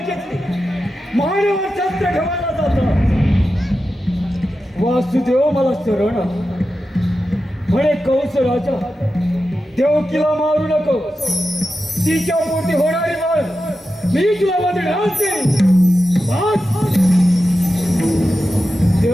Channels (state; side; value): normal; both; correlation 0.91